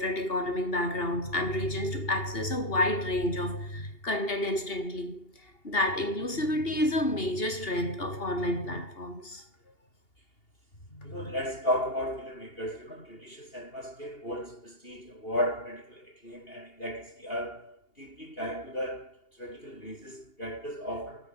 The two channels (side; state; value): right; late; 2.8 ms